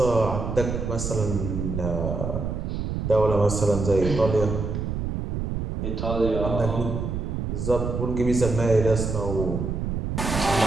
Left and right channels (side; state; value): right; noise; rumble, 3 dB below the sound